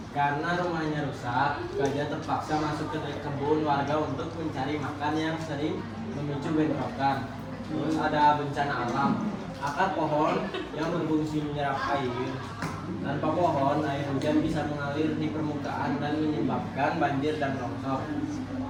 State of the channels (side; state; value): both; identical; correlation 1.00